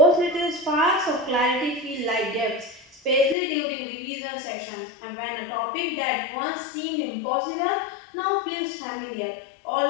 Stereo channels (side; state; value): right; drops out; at 3.4 s